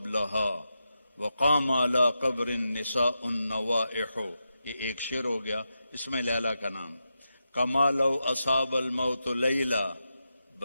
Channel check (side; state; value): both; inverted; correlation -0.89